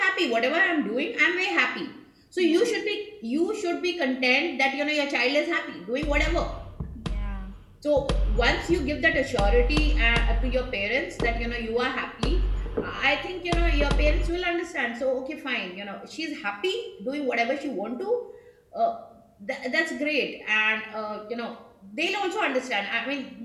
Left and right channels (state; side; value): identical; both; correlation 1.00